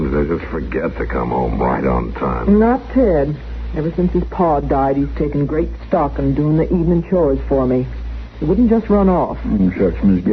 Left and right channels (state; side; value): identical; both; correlation 1.00